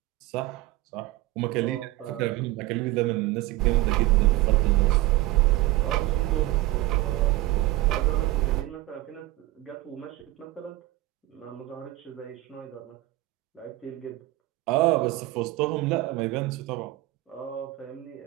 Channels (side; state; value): left; quieter; 17.3 dB